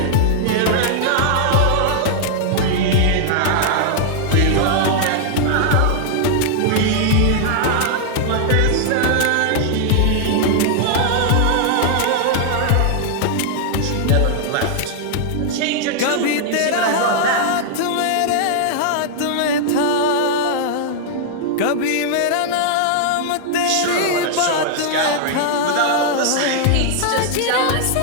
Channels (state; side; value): different; both; correlation -0.01